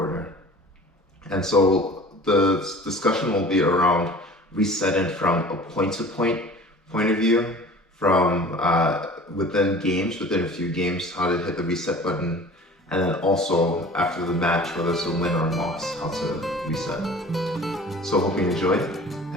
And so the discussion will be around resetting from a point-to-point point of view, from within games, within a few games, how to hit the reset button, and then also after the match, whether it's a win or a loss, how to reset. So hope you enjoyed,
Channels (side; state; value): both; normal; correlation 0.43